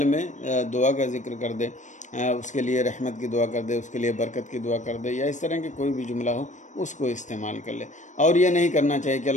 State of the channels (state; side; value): late; right; 0.35 ms